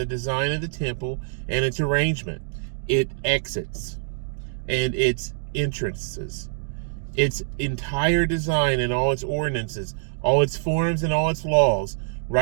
design of the temple and its arrangement, its exits, and its entrances, its entire design and all its ordinances, all its forms and all its laws.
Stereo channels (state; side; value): silent; left; digital silence